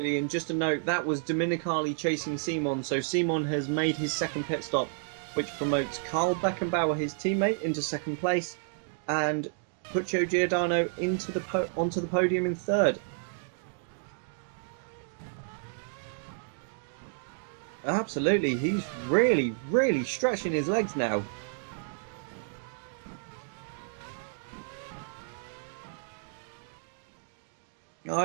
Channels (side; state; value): left; silent; digital silence